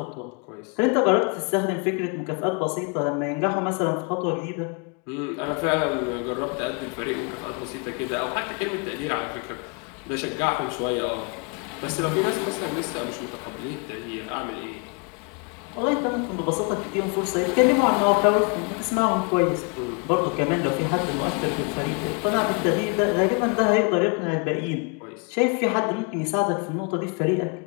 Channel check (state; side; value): quieter; right; 34.4 dB